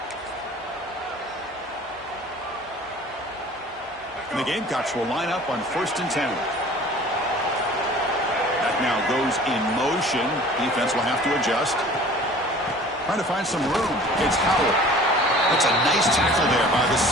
And the Gamecocks will line up on 1st and 10. That now goes in motion. Defense will have to adjust. Trying to find some room. It's Howell. That's a nice tackle there by the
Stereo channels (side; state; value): both; normal; correlation 0.47